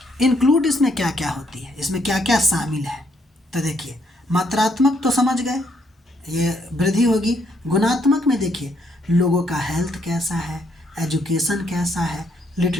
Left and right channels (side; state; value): both; normal; correlation 0.72